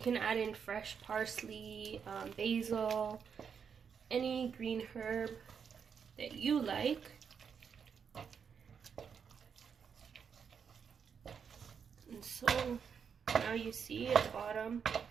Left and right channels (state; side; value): quieter; left; 6.8 dB